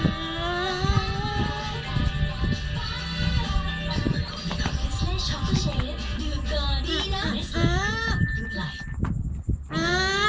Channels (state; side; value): identical; both; correlation 1.00